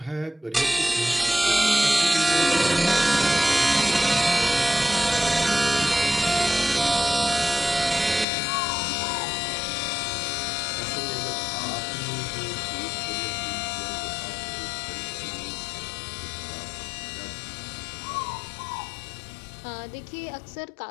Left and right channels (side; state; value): right; drops out; at 8.2 s